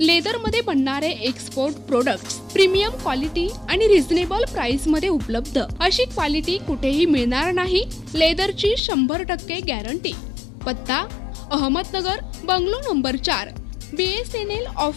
बनणारे एक्सपोर्ट प्रोडक्ट्स प्रीमियम क्वालिटी आणि reasonable price मध्ये उपलब्ध. अशी क्वालिटी कुठेही मिळणार नाही. लेदरची 100% गॅरंटी. पत्ता Ahmednagar, bungalow number 4, BSNL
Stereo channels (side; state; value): right; drops out; at 8.8 s